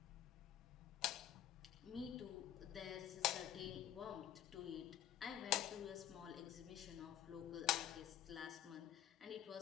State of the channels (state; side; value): quieter; right; 11.7 dB